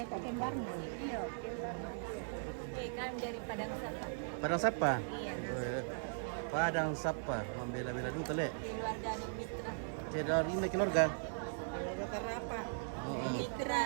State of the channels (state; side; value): silent; left; digital silence